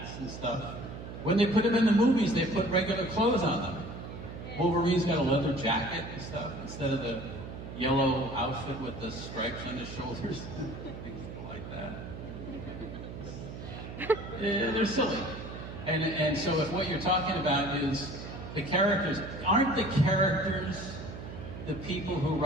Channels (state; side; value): noise; right; hum, 10 dB below the sound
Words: and stuff. When they put them in the movies, they put regular clothes on them. Wolverine's got a leather jacket and stuff instead of the yellow outfit with the stripes on his shoulders. Things like that. Yeah, they're silly. And so if what you're talking about is the characters, aren't the characters the people who